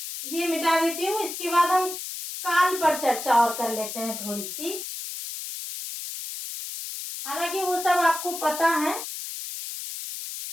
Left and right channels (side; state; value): left; noise; hiss, 8 dB below the sound